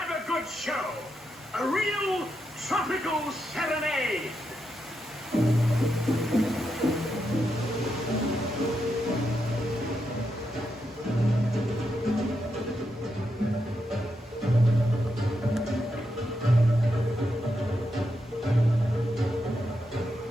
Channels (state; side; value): normal; both; correlation 0.84